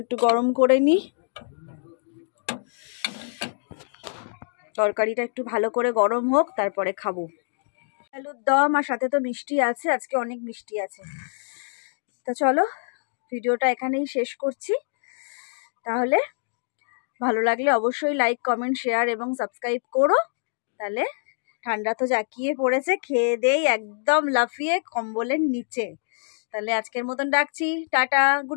একটু গরম করে নি, তরকারিটা একটু ভালো করে গরম হোক, তারপরে খাবো। আলুর দম আর সাথে তো মিষ্টি আছে, আজকে অনেক মিষ্টি আছে। তা চলো ভিডিওটা এখানেই শেষ করছি। তাহলে ভালো লাগলে অবশ্যই লাইক, কমেন্ট, শেয়ার এবং সাবস্ক্রাইব করো। তাহলে ঠান্ডা তো জাঁকিয়ে পড়েছে, খেয়ে দেই একদম লাফিয়ে কম্বলের নিচে। তাহলে আজকের মতন ডাকছি, tata,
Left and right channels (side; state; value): right; silent; digital silence